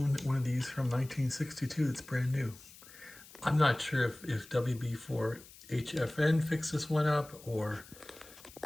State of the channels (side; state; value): left; noise; hiss, 20 dB below the sound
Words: one of these from 1962 that's brand new? I'm not sure if WB4HFN fixed this one up or